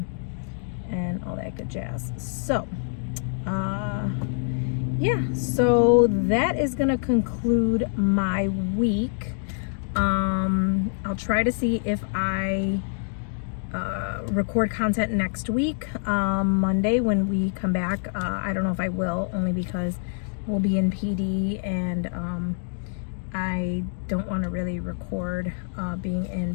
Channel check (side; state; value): right; silent; digital silence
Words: and all that good jazz. So yeah, so that is gonna conclude my week. I'll try to see if I record content next week, Monday when we come back. I don't know if I will, only because we'll be in PD, and I don't want to really record being in